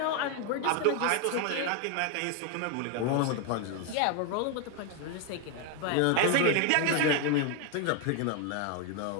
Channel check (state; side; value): different; both; correlation 0.01